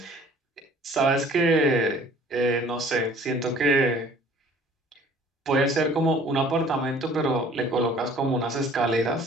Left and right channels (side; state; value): both; normal; correlation 0.52